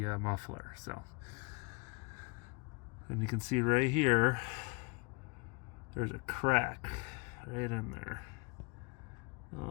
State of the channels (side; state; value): right; quieter; 30.0 dB